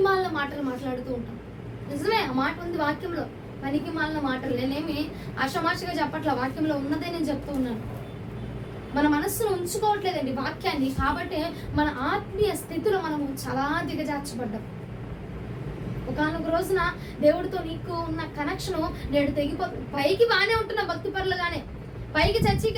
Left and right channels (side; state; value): both; identical; correlation 1.00